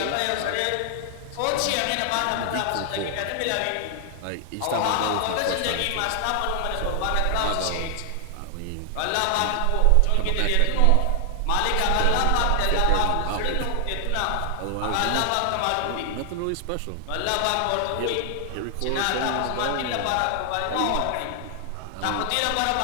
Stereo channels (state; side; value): different; both; correlation 0.00